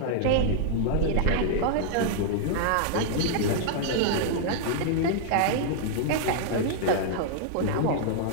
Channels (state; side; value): different; both; correlation -0.01